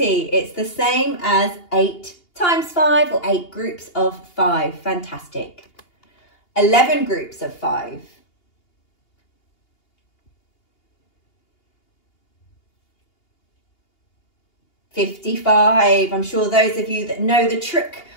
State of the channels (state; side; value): late; right; 2.8 ms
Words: It's the same as 8 times 5 or 8 groups of 5. Fantastic. 11 groups of 5. 55. I'm sure those of you that know the trick